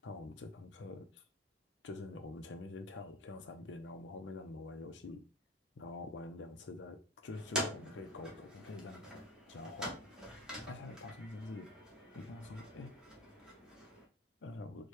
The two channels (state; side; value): normal; both; correlation 0.32